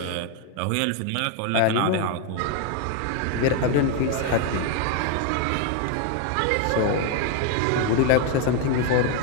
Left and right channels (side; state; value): both; different; correlation 0.01